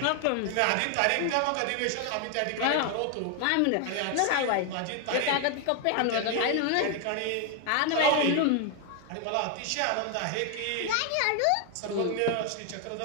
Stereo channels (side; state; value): both; different; correlation 0.01